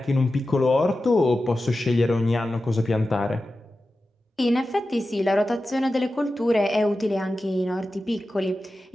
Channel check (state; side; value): normal; both; correlation 0.93